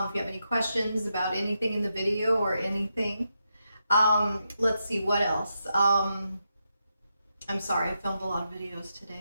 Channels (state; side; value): inverted; both; correlation -0.85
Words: you have any questions about anything in the video or anything. Let's see, what else? I'm sorry, I filmed a lot of videos